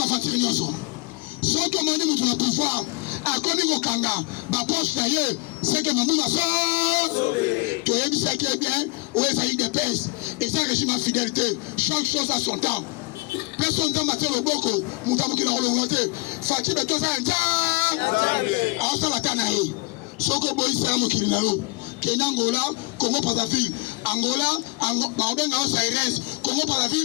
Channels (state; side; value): quieter; right; 24.6 dB